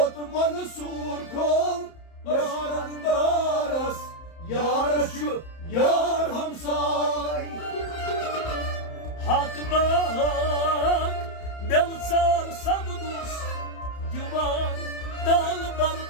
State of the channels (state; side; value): late; right; 30 ms